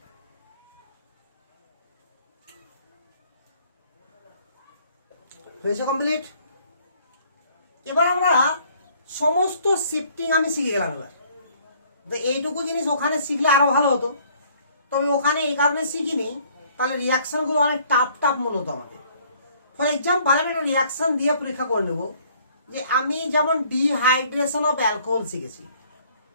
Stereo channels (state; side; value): inverted; both; correlation -0.60